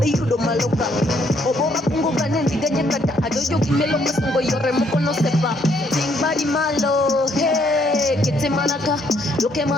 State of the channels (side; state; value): both; normal; correlation 0.69